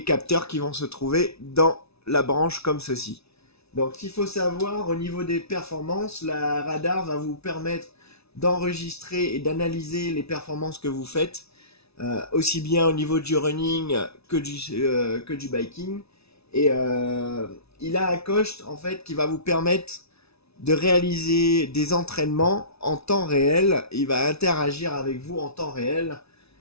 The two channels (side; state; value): right; late; 0.79 ms